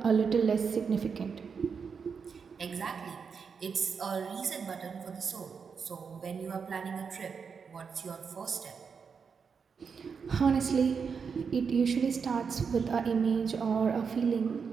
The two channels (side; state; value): left; quieter; 6.0 dB